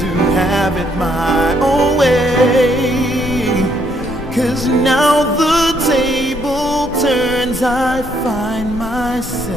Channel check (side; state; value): both; normal; correlation 0.71